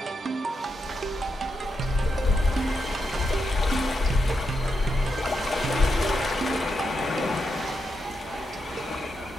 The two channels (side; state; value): both; normal; correlation 0.84